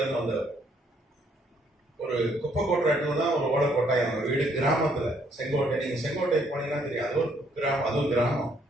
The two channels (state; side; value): normal; both; correlation 0.68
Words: இருந்து வந்தவர். ஒரு குப்பை கொட்டுற இடத்துல தான் ஒரு ஓலை கொட்டாய். அவங்க வீடு கிராமத்துல, செங்கோட்டை. நீங்க செங்கோட்டை போனீங்கன்னா தெரியும், அது ஒரு கிராமம், அதுவும் கிராமம்.